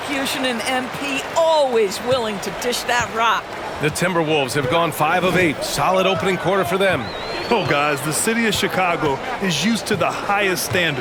in MP, always willing to dish that rock. The Timberwolves have gone 5 of 8. Solid opening quarter for them. oh guys, the city of Chicago is used to the highest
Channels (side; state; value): both; identical; correlation 1.00